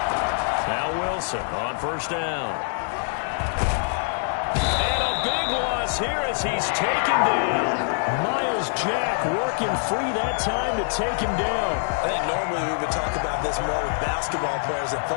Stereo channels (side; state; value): right; silent; 60 dB below the other